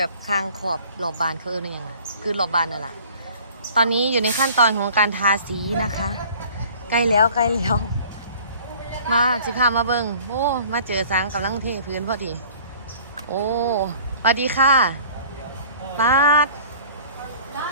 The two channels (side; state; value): both; inverted; correlation -0.49